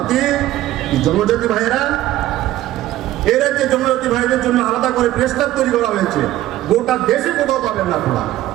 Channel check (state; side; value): quieter; left; 14.7 dB